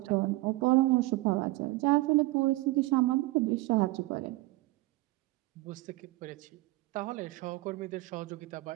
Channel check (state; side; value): quieter; left; 20.3 dB